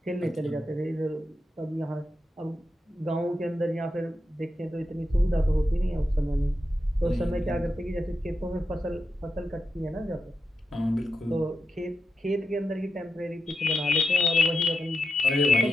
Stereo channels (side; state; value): both; normal; correlation 0.88